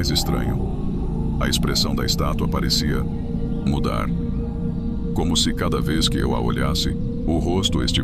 estranho, a expressão da estátua parecia mudar. Como se cada vez que eu a olhasse, o rosto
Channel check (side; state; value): both; identical; correlation 1.00